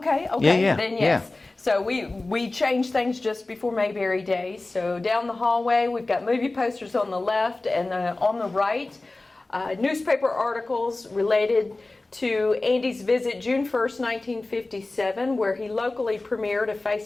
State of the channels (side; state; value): right; quieter; 3.1 dB